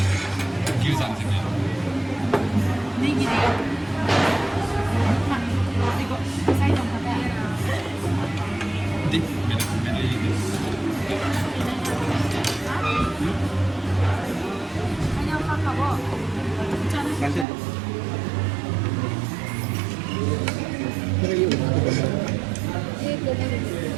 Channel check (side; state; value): left; drops out; at 17.4 s